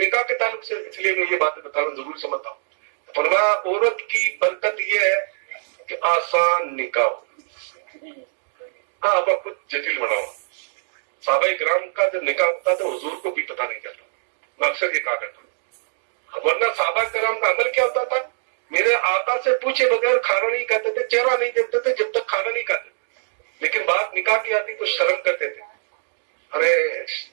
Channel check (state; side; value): silent; left; digital silence